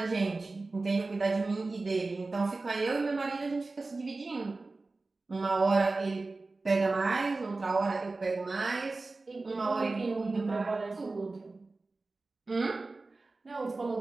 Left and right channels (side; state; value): left; quieter; 3.5 dB